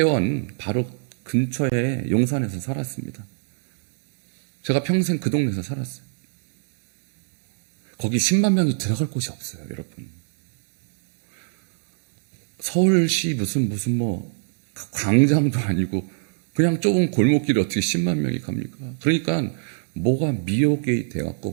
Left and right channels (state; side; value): silent; left; 64 dB below the other